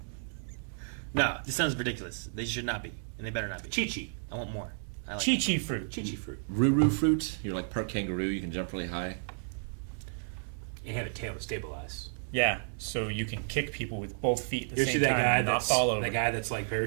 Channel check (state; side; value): silent; left; digital silence